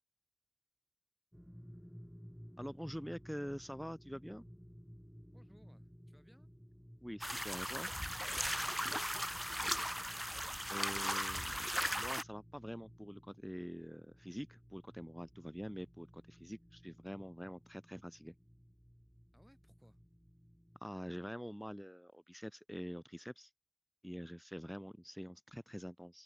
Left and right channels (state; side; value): identical; both; correlation 1.00